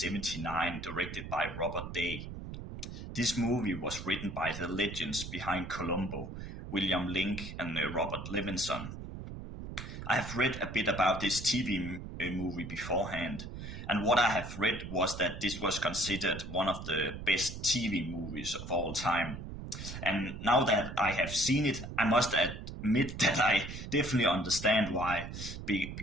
directed by Robert Day. This movie was written by the legends behind Columbo, William Link and Robert Levinson. I have read a bit about this TV movie beforehand, and what I have read was that this was considered one of the best TV movies of all time. And now that I have seen it, I must admit that I definitely understand why,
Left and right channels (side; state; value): right; noise; rumble, 9 dB below the sound